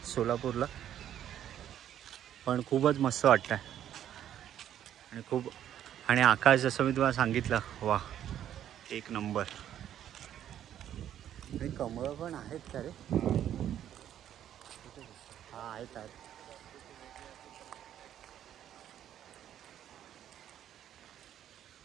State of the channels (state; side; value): quieter; left; 10.8 dB